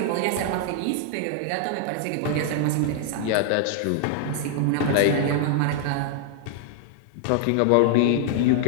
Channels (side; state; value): both; different; correlation 0.00